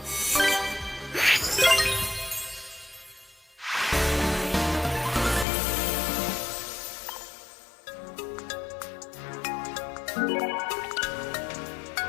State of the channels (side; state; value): right; drops out; at 5.5 s